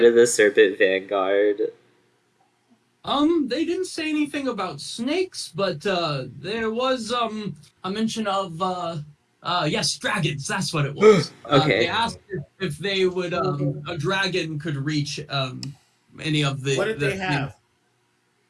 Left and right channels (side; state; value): both; identical; correlation 1.00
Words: ship? of the Serpent Vanguard? They didn't say anything about snakes, but there was a mention of yes, dragons. That's what it was. Okay. They asked if they would a dragon could reach any of the. What did they have?